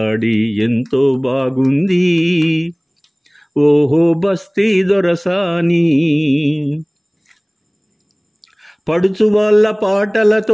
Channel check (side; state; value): both; identical; correlation 1.00